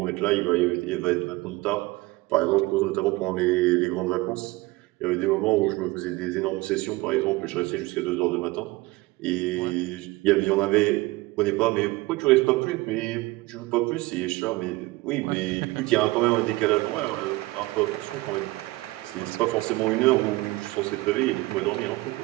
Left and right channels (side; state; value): left; quieter; 21.1 dB